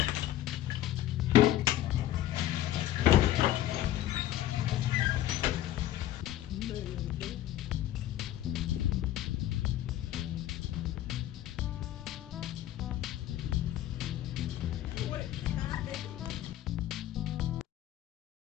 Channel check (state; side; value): quieter; right; 13.3 dB